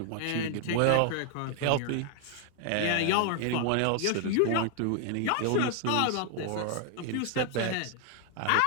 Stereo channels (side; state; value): both; different; correlation 0.00